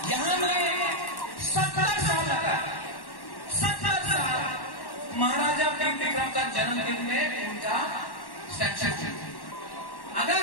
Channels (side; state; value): right; late; 1.1 ms